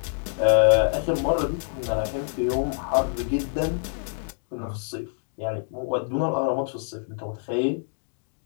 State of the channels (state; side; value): silent; right; digital silence